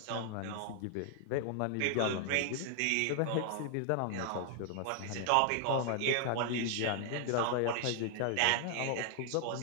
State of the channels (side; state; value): both; different; correlation 0.00